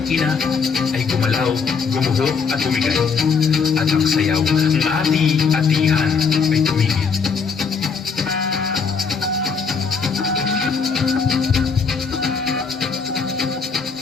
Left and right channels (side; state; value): right; quieter; 5.5 dB